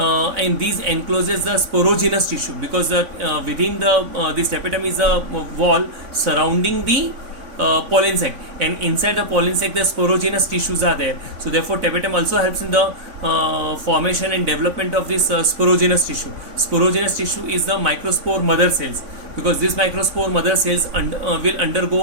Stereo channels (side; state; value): left; late; 3.5 ms